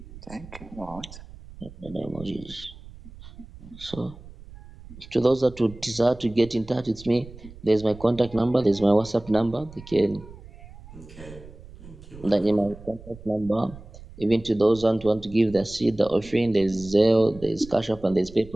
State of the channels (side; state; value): right; noise; rumble, 18 dB below the sound